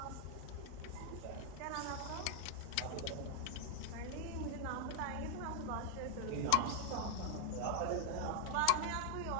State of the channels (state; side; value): different; both; correlation 0.00